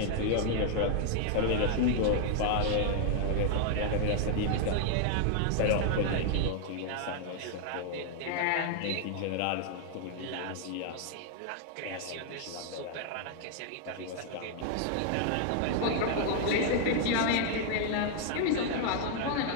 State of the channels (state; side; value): different; both; correlation 0.00